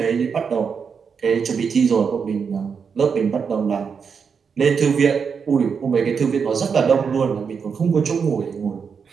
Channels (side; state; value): left; quieter; 6.2 dB